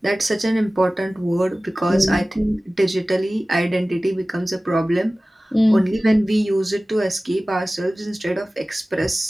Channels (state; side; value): normal; both; correlation 0.97